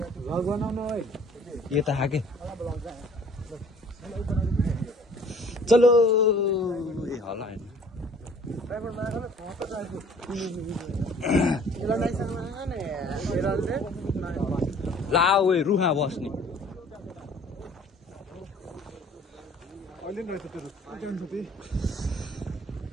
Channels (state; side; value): normal; both; correlation 0.53